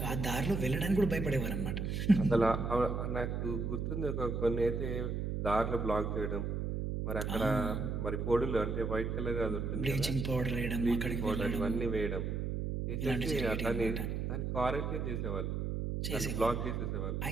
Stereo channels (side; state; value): right; noise; hum, 1 dB below the sound